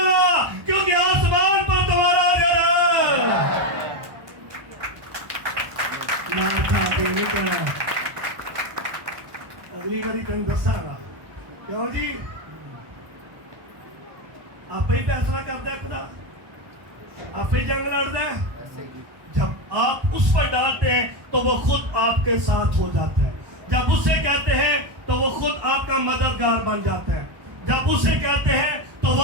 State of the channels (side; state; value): left; late; 1.2 ms